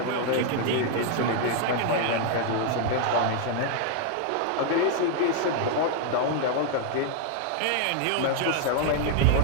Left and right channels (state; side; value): different; both; correlation 0.00